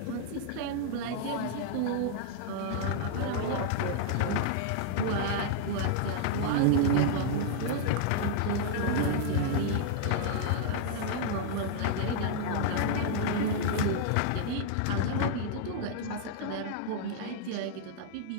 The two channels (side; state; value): both; different; correlation -0.01